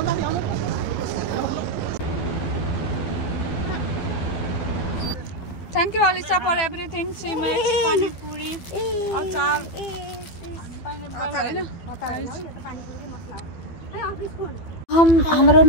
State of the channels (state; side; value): late; right; 12 ms